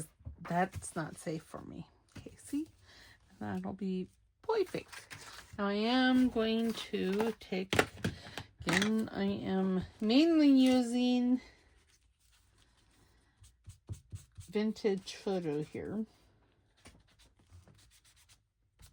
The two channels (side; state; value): both; identical; correlation 1.00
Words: that's not safe for me. Okay, see? That'll be perfect. Now I am going to take, again, I am mainly using vintage photo here.